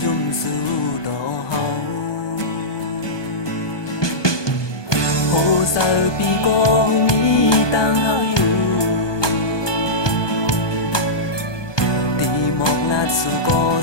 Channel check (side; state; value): right; late; 1.2 ms